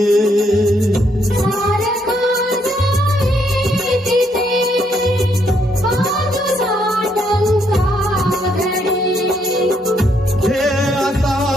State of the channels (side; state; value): both; normal; correlation 0.73